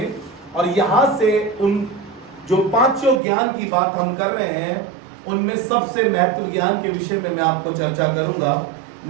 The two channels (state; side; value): drops out; left; at 3.2 s